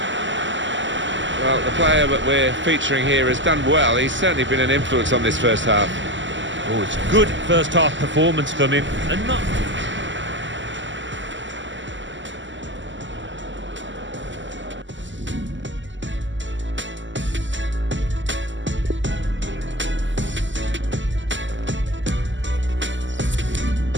Well, the player that we're featuring here has done well. He's certainly been an influence on this first half. Oh, it's good first half performance from him, and not...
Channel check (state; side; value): late; left; 0.54 ms